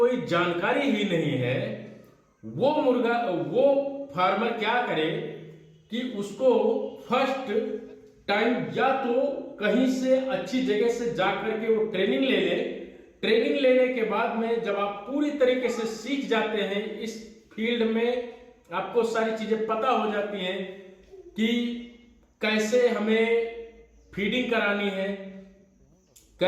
जानकारी ही नहीं है, वो फार्मर क्या करे कि उसको फर्स्ट टाइम या तो कहीं से अच्छी जगह से जाकर के वो ट्रेनिंग ले ले। ट्रेनिंग लेने के बाद में जब आप पूरी तरीके से सीख जाते हैं इस फील्ड में, आपको सारी चीजें पता हो जाती हैं कि कैसे हमें फीडिंग करानी है,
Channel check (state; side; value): identical; both; correlation 1.00